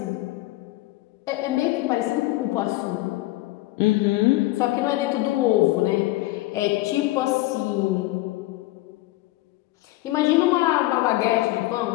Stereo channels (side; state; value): right; quieter; 18.4 dB